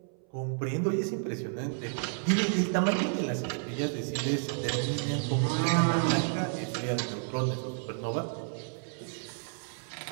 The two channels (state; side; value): silent; left; 57 dB below the other